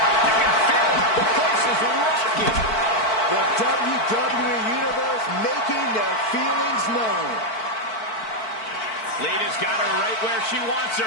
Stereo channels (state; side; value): late; right; 4.5 ms